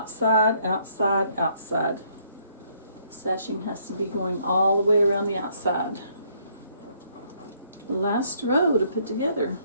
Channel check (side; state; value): both; inverted; correlation -0.68